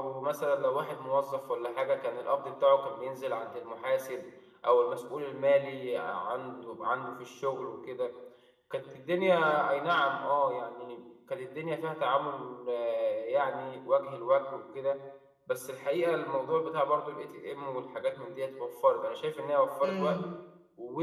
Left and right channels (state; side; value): identical; both; correlation 1.00